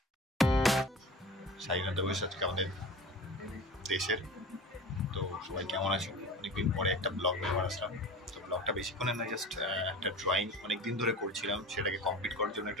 স্বাধীনতা দিবস আজকে আমাদের দেশের। তো সবাই কেমন আছো? অনেকদিন পরে একটা ব্লগ ব্যবহার আসলাম। তো ব্লগটা বেশিক্ষণের না, জাস্ট একটা ড্রয়িং অনেকদিন ধরে করছিলাম, সেটাকে কমপ্লিট করার জন্য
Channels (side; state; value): both; normal; correlation 0.35